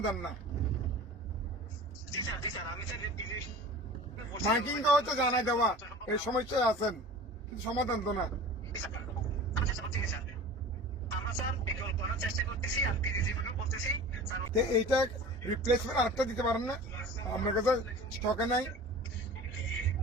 না। জি স্যার, জি স্যার, আমি স্যার মাইকিংটা হচ্ছে জানাই দেওয়া এই সমস্যায় আছেন, কিন্তু সমাধান তো না। আমি চেষ্টা করতেছি স্যার, আমরা স্যার বিকল্প করার চেষ্টা করতেছি, আর পিজিজি বলতেছি স্যার এইটা রিপ্লেসমেন্ট আরেকটা দিতে পারেন না? আপনার কাছে স্টকে নাই?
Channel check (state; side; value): normal; both; correlation 0.39